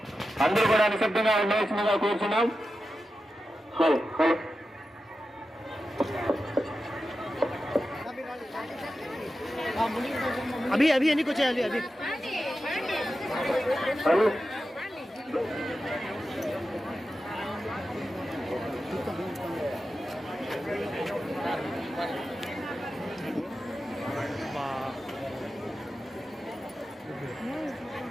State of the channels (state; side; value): normal; both; correlation 0.91